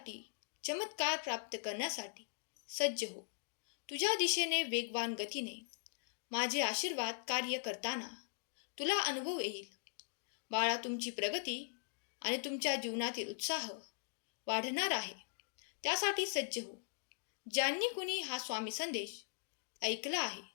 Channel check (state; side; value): silent; right; digital silence